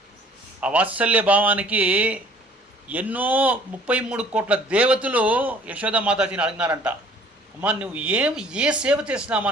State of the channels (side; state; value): both; normal; correlation 0.54